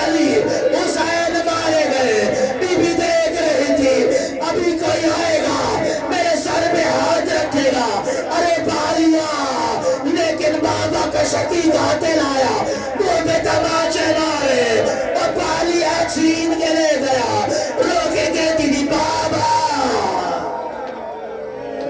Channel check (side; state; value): both; identical; correlation 1.00